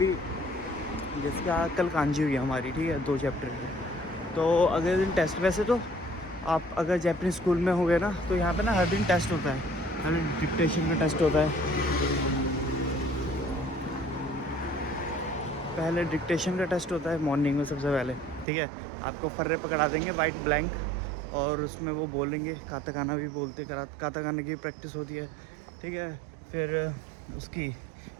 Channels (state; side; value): drops out; left; at 18.4 s